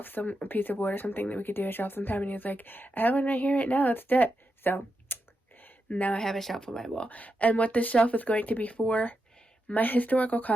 some piece of wood or something that we could do a shelf sometime? And he was like, I have one right here right now, let's do it. So, now I have a shelf on my wall. And what this shelf is going to be for, my historical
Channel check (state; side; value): normal; both; correlation 0.86